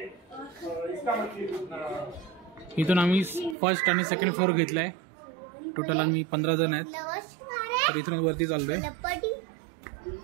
इथून आम्ही फर्स्ट आणि सेकंड फ्लोअर घेतलाय. टोटल आम्ही 15 जण आहेत. तर इथून वरती चाललोय.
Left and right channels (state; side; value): drops out; left; at 3.6 s